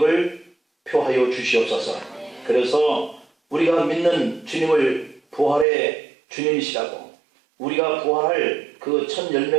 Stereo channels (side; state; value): left; drops out; at 5.7 s